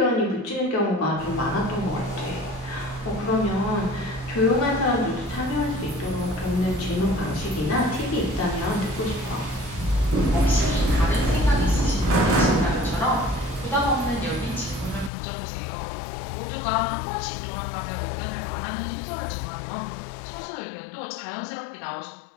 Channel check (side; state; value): right; drops out; at 15.1 s